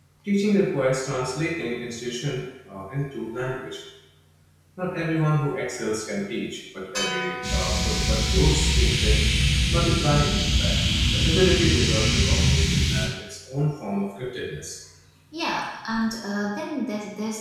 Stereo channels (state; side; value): identical; both; correlation 1.00